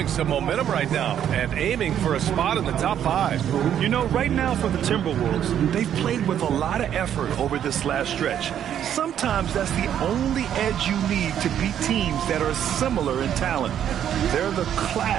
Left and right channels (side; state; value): left; quieter; 9.8 dB